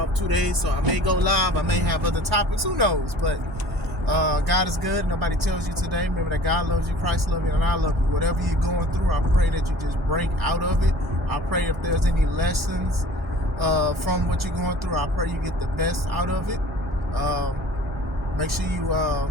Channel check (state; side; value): normal; both; correlation 0.46